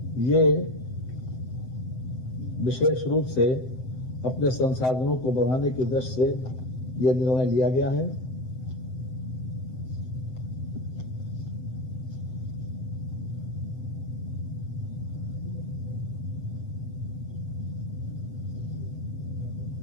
ये विशेष रूप से अपने संसाधनों को बढ़ाने की दृष्टि से यह निर्णय लिया गया है।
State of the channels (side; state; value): right; late; 7.8 ms